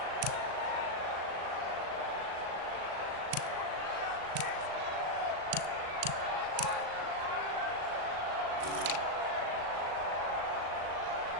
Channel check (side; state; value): left; late; 38 ms